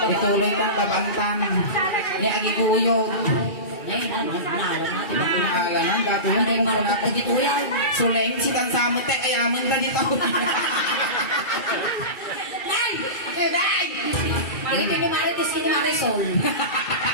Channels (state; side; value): late; right; 2.3 ms